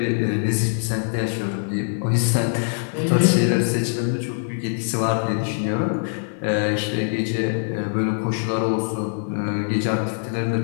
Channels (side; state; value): right; silent; 64 dB below the other